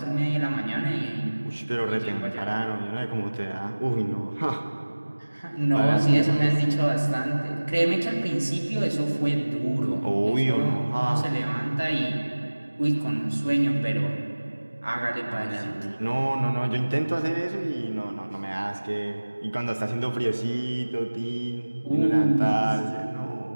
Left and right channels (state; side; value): inverted; both; correlation -1.00